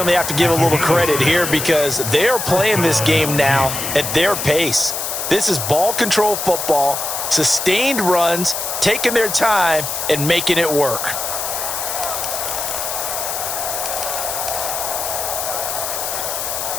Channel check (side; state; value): left; noise; hiss, 3 dB below the sound